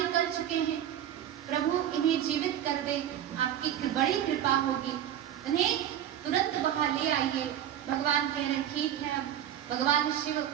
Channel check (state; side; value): quieter; left; 10.7 dB